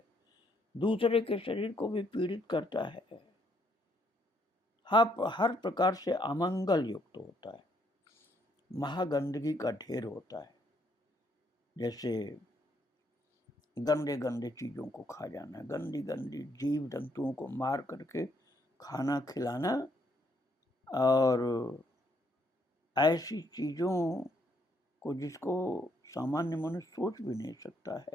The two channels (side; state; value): both; normal; correlation 0.71